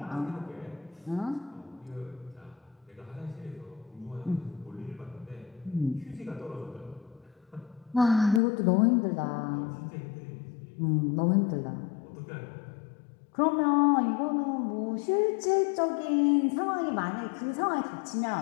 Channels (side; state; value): right; drops out; at 8.4 s